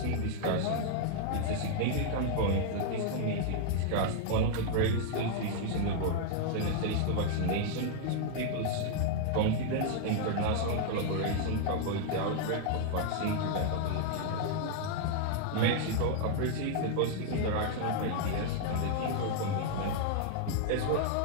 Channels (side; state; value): both; different; correlation 0.00